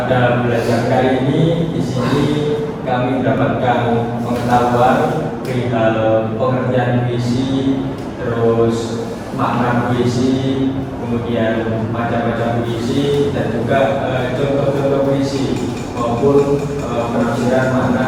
puisi, kemudian macam-macam puisi, dan juga contoh-contoh puisi maupun penafsiran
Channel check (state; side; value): identical; both; correlation 1.00